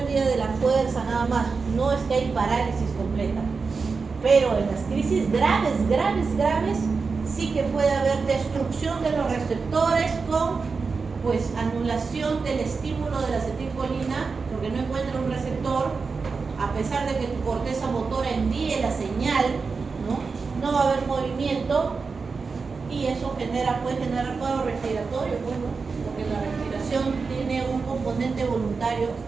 de la fuerza, nada más. No es que hay parálisis completa. Pero en las crisis graves, sí que puede haber destrucción de los receptores con pues anulación del estímulo de la acetilcolina, porque no encuentra un receptor, a pesar de que tu corteza motora envíe la señal, no va a haber movimiento y eso puede generar cuadro respiratorio, bueno, porque la respiración tiene un componente voluntario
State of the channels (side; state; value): left; quieter; 4.7 dB